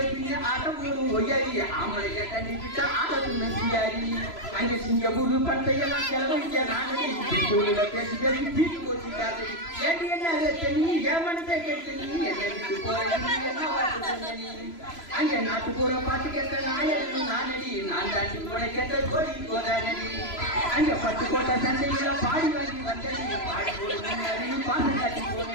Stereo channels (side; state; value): right; late; 3.0 ms